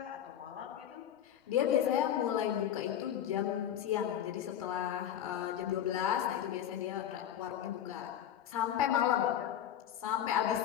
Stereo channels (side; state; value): right; quieter; 10.4 dB